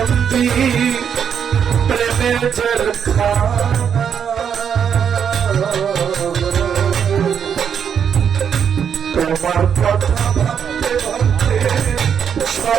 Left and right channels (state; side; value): quieter; left; 7.8 dB